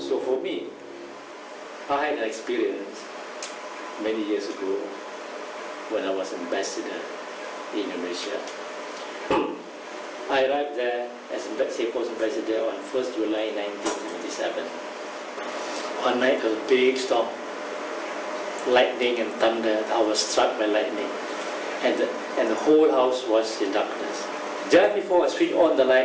So for me, I had an experience many years ago when I was ambassador in Indonesia. I arrived there as Singapore's ambassador on 1st July 1977. One night a big storm, lightning and thunder. I was struck by lightning, and the whole house was in darkness. Just before I switched on the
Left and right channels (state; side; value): identical; both; correlation 1.00